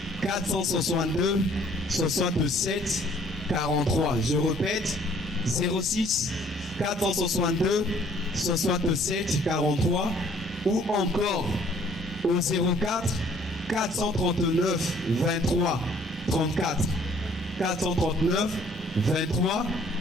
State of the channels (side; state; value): right; noise; rumble, 18 dB below the sound